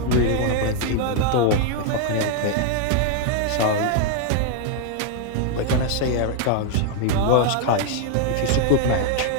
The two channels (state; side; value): different; both; correlation 0.00